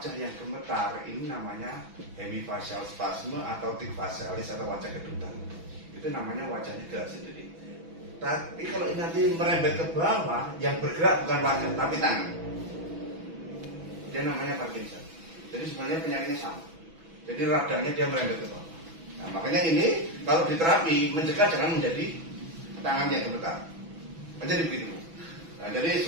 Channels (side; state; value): left; late; 6.1 ms